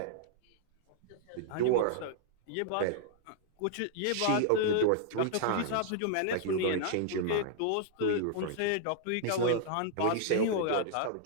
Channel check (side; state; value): both; different; correlation -0.01